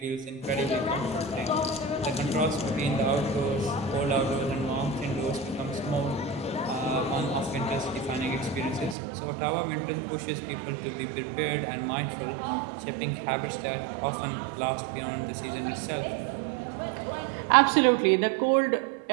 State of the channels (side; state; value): left; drops out; at 9.0 s